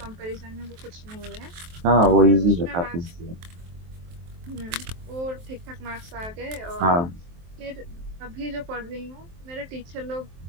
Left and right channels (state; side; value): late; left; 23 ms